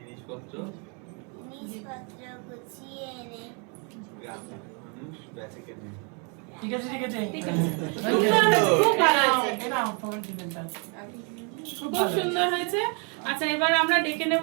গুছিয়ে এনে গ্রামের মানুষ বেঁচে কেনে। ঠিক আছে ঠিক আছে ঠিক আছে। খুব ভালো হয়েছে। এরাও তোমার জীবনটা খুব সুন্দর হয়েছে। আচ্ছা, এবার আমরা ডেকে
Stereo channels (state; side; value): quieter; left; 36.0 dB